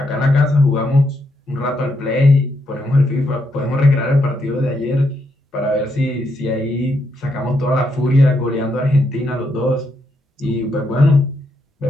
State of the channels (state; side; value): normal; both; correlation 0.79